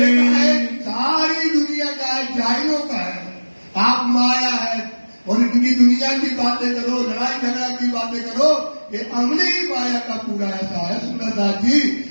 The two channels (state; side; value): inverted; both; correlation -1.00